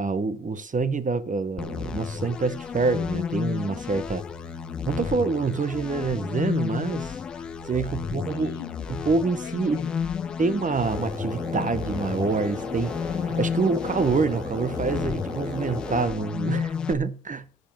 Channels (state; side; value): normal; both; correlation 0.59